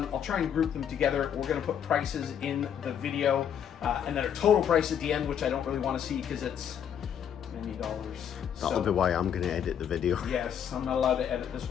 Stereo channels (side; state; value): right; quieter; 8.7 dB